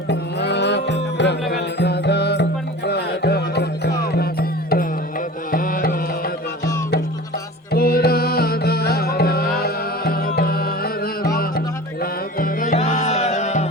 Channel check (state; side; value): normal; both; correlation 0.37